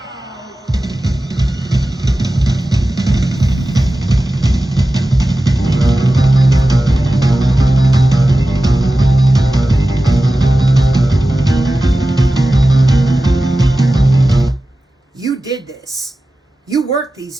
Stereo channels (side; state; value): both; normal; correlation 0.95